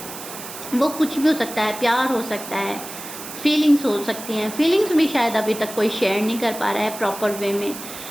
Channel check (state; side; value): noise; right; hiss, 11 dB below the sound